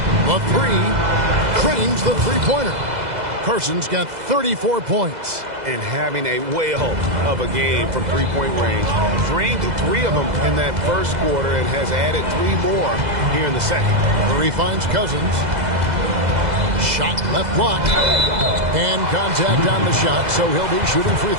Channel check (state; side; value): late; left; 2.0 ms